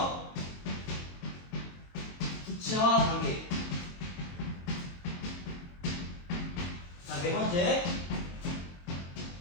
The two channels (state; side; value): late; right; 22 ms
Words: 구체화 단계. 자, 네 번째,